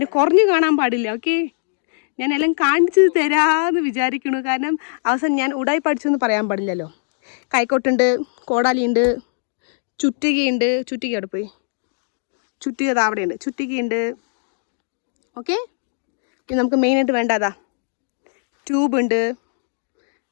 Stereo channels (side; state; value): right; silent; digital silence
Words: കുറഞ്ഞു കാണാൻ പാടില്ല. ഓക്കെ, ഞാൻ എല്ലാം കാണിച്ചു തരാമെന്ന് വിചാരിക്കണു. കാരണം അവസാനം ഞാൻ ഉടായി പഠിച്ചെന്ന് പറയാൻ പാടില്ലല്ലോ. കൈക്കോട്ടുണ്ട്, കോടാലിയുണ്ട്, ചുറ്റികയുണ്ട്. ചുറ്റിക അവിടെ പോയി, ചുറ്റിക അവിടെയുണ്ട്, ചുറ്റികയുണ്ട്. ഓക്കെ, ഇത് നമുക്ക് മെയിനായിട്ട് വേണ്ടതാ. ട്യൂബുണ്ട്,